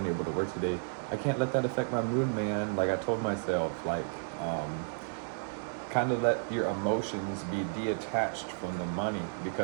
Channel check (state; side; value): silent; left; digital silence